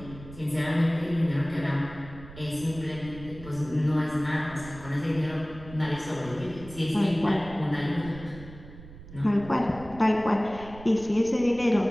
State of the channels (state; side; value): noise; right; rumble, 16 dB below the sound